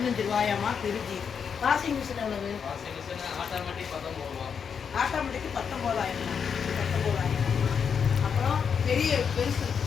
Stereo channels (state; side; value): quieter; right; 6.8 dB